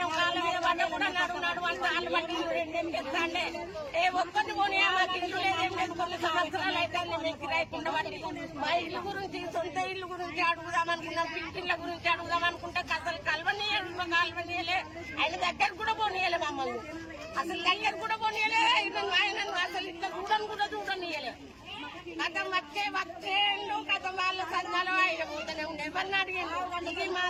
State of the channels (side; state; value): both; identical; correlation 1.00